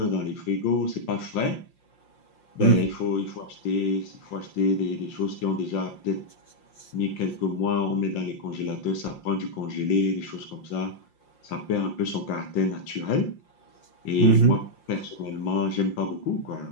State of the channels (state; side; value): late; right; 5.7 ms